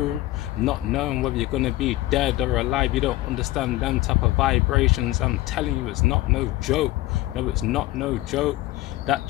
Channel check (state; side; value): quieter; right; 17.3 dB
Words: not knowing whether you're gonna be dead or alive. You don't understand them type of vibrations. I'm telling you, it's not no joke. No, it's not no joke. That